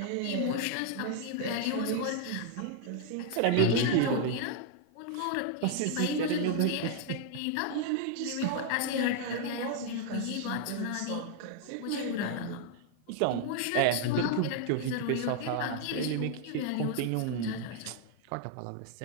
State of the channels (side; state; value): both; different; correlation 0.00